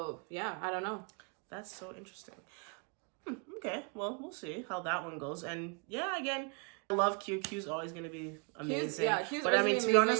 yeah, I don't know. That's so interesting. Okay, well, we'll see how that one goes. And yeah, again, I love Q. Q's always going to be amazing. Q's but I mean, to be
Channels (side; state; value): left; quieter; 35.4 dB